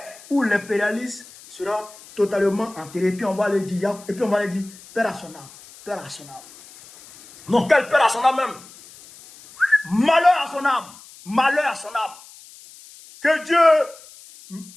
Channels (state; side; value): noise; left; hiss, 21 dB below the sound